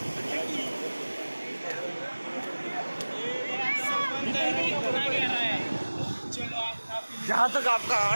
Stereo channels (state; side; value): inverted; both; correlation -1.00